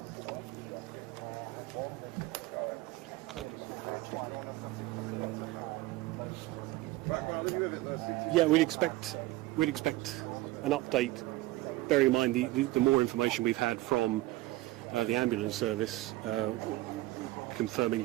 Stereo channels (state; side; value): quieter; left; 18.4 dB